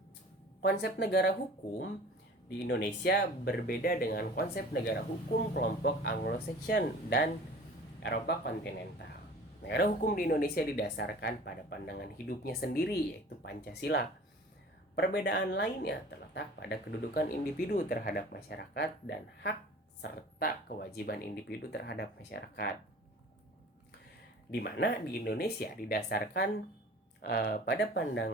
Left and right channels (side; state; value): both; normal; correlation 0.44